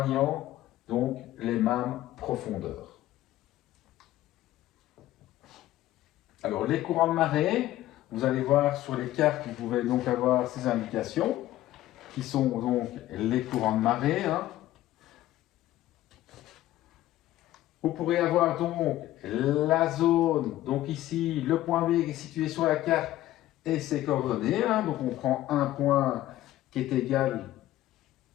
donc les mêmes profondeurs. Alors les courants de marée, vous allez voir sur les cartes, vous pouvez donc avoir ces indications qui sont donc les courants de marée. Vous pourrez avoir donc la zone, donc ici le point B qui est situé sur la carte et ses coordonnées. Donc on prend un point qui est égal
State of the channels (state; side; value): quieter; right; 14.7 dB